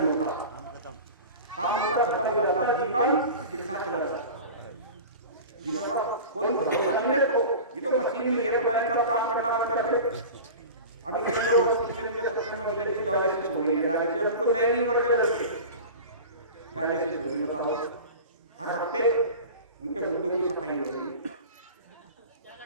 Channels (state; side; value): inverted; both; correlation -0.34